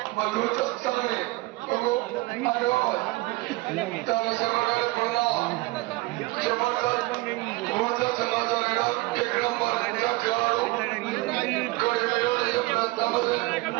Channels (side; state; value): left; quieter; 21.9 dB